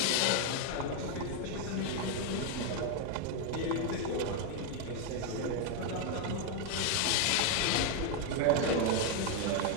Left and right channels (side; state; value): both; different; correlation 0.01